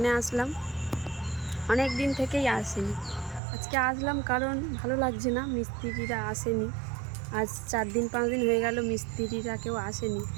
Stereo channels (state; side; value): drops out; left; at 3.4 s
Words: আসলাম। অনেক দিন থেকেই আসেনি, আজকে আসলাম কারণ ভালো লাগছে না, মিস্ত্রিরা আসেনি। আজ 4 দিন 5 দিন হয়ে গেল মিস্ত্রিরা কেউ আসেনি।